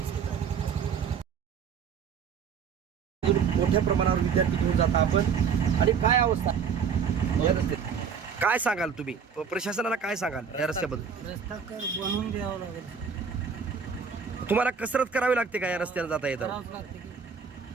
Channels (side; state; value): left; quieter; 6.6 dB